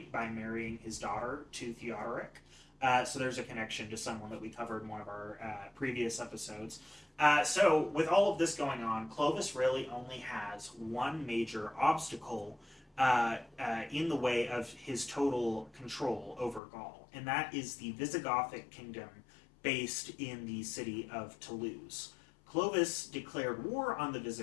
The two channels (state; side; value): drops out; right; at 16.6 s